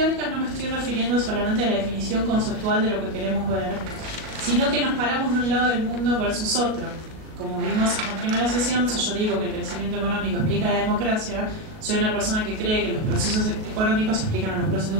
no me estoy refiriendo solamente a la definición conceptual de lo que queremos ver, sino que nos paramos de un lado del mundo versus otro. Como vimos en la primera sesión, si yo digo que el crecimiento económico explica la democracia, soy una persona que cree que los procesos económicos explican a los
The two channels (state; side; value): late; left; 38 ms